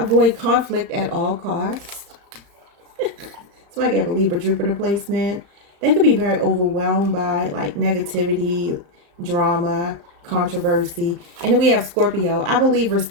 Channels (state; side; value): late; left; 35 ms